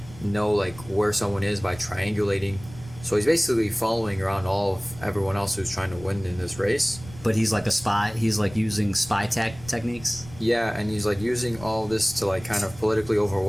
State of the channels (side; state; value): right; noise; rumble, 17 dB below the sound